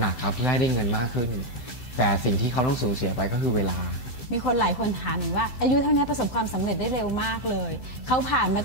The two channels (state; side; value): late; right; 15 ms